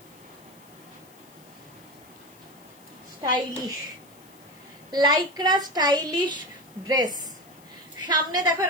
Stylish Lycra stylish dress. সামনে দেখো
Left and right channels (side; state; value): left; noise; hiss, 26 dB below the sound